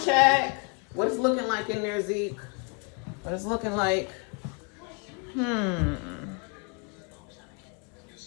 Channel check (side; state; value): right; quieter; 36.4 dB